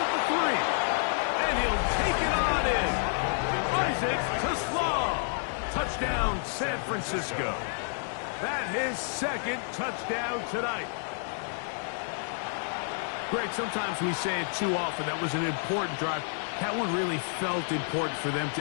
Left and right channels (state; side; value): silent; right; 58 dB below the other